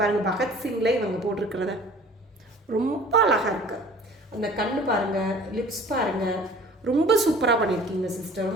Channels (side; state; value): both; normal; correlation 0.48